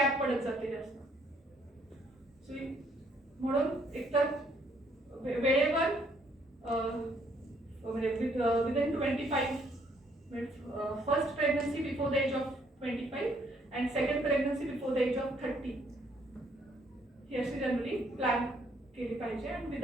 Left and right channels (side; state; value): both; normal; correlation 0.67